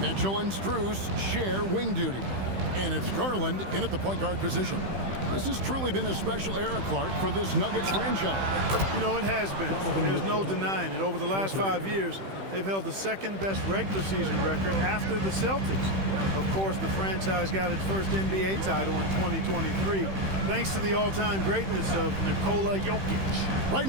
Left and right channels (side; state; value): left; late; 15 ms